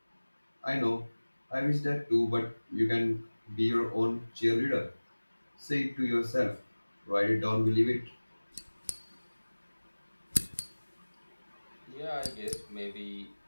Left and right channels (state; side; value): inverted; both; correlation -1.00